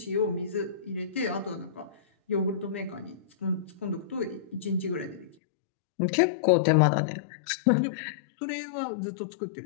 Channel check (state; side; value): drops out; right; at 5.4 s